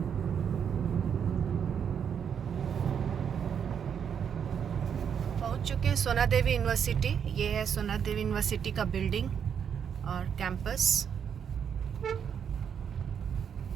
पहुंच चुके हैं सोना देवी यूनिवर्सिटी। ये है सोना देवी यूनिवर्सिटी का बिल्डिंग और कैंपस।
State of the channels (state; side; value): quieter; left; 7.7 dB